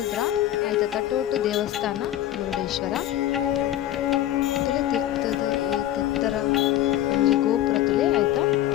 ಐತ ತಟೋಟು ದೇವಸ್ಥಾನ ಮುರುಡೇಶ್ವರ ತುಲೆ ತಿರ್ತದ ಈ ತಿತ್ತರ ಒಂಜಿ ಗೋಪುರ ತುಲೆ ಐತ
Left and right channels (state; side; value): quieter; right; 12.8 dB